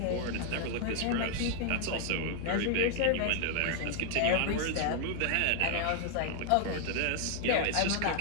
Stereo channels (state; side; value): different; both; correlation 0.00